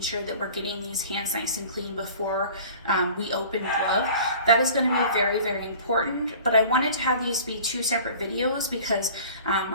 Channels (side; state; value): both; inverted; correlation -0.45